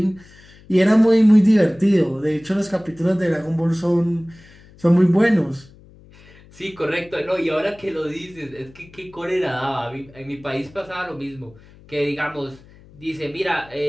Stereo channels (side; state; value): left; noise; hum, 24 dB below the sound